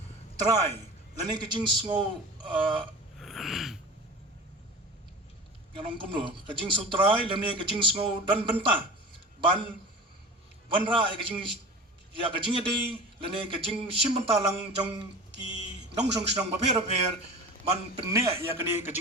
try lani kajing sngo ngalong kumno kajing sutrai lemne kajing sngo dan benta ban banra kajing ya kajing ade lene kajing simbenta lang jong ki nong song snong ba mer ban penne ya kani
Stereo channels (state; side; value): normal; both; correlation 0.34